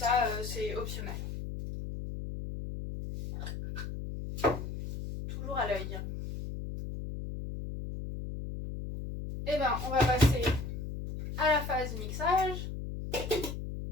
c'est optionnel. Toujours à l'œil. Et on va passer à la phase mixage.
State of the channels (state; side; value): noise; left; hum, 7 dB below the sound